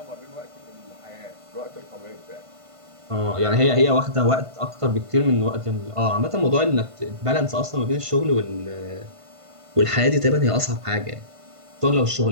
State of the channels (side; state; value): left; late; 1.5 ms